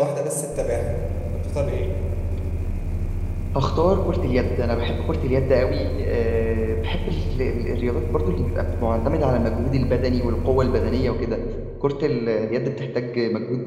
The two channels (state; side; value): identical; both; correlation 1.00